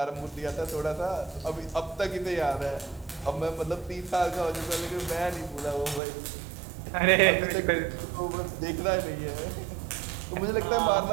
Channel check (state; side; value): drops out; left; at 6.0 s